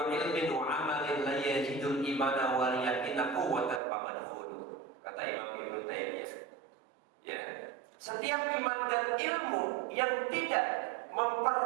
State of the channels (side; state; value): left; drops out; at 3.8 s